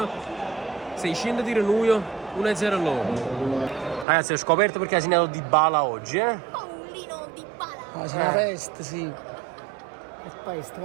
600 tiri noi, 1-0 loro. Ragazzi, ho scoperto perché ha segnato Di Bala oggi, Paolino Di Bala. Ma c'è una peste, sì. È peste,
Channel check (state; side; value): drops out; left; at 4.0 s